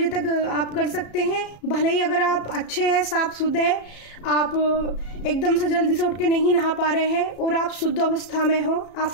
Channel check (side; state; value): right; late; 34 ms